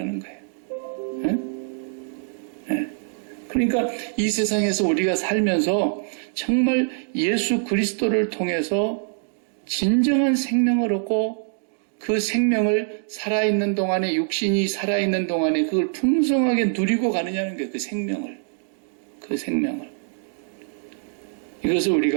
거예요. 네? 네. 그러니까 이 세상에서 우리가 살면서 정말 예수 그리스도를 통해서 진정한 생명을 얻고 그 생명을 살아있는 동안에 육신이 살아있는 동안에 그걸 풍성하게 누리고 가느냐는 거예요. 그 생명을. 이것을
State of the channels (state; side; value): silent; left; digital silence